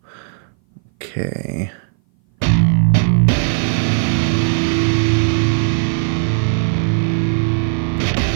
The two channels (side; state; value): left; silent; 59 dB below the other